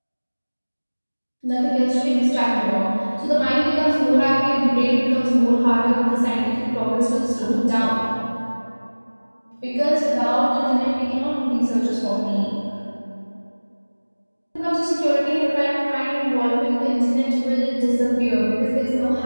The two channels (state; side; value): inverted; both; correlation -1.00